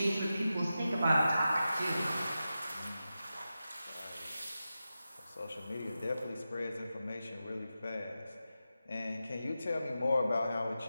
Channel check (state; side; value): inverted; both; correlation -0.92